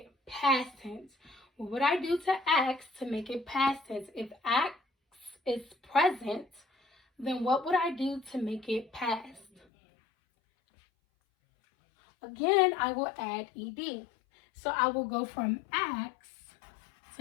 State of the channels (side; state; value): right; drops out; at 9.6 s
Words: past tense? What would I do to acts to make it past tense? If acts is present, then what would I do to make it past? Again, I will add ed. So I will go from acts